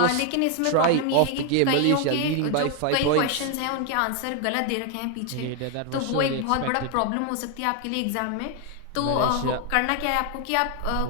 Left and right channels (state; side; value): different; both; correlation 0.01